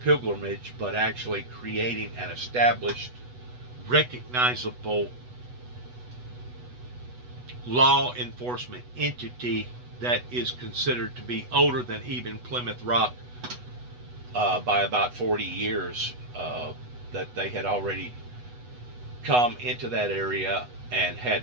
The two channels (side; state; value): left; late; 8.1 ms